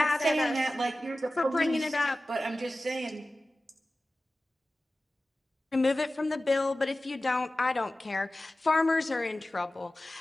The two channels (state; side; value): normal; both; correlation 0.96